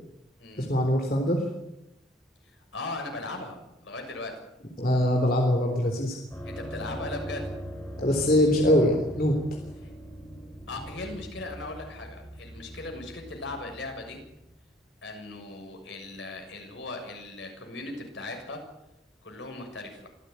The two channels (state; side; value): normal; both; correlation 0.56